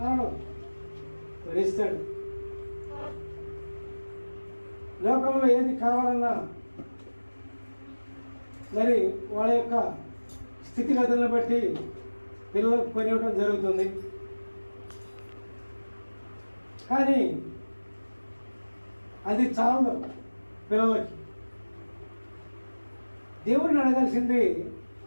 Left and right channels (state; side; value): inverted; both; correlation -1.00